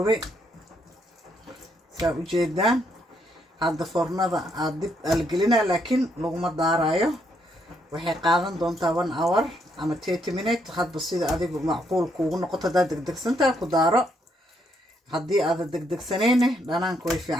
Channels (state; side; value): normal; both; correlation 0.74